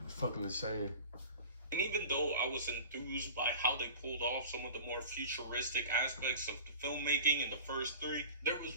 It's fucking insane. And even though I was enthused by how they pulled off some of the more futuristic aspects of the filmmaking in the first 3, there was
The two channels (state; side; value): inverted; both; correlation -0.40